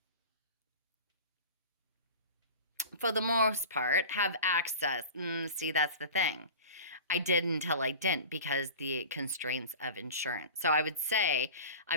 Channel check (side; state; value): both; inverted; correlation -0.35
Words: for the most part, have access. See, that's the thing. I did until I didn't, because the constraints of insurance. So I would say